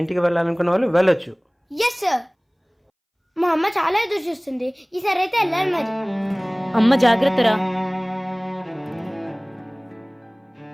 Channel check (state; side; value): identical; both; correlation 1.00